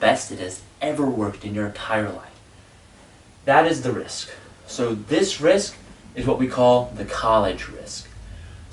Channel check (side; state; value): both; identical; correlation 1.00